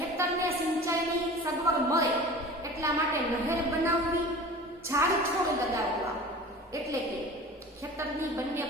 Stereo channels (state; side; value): normal; both; correlation 0.39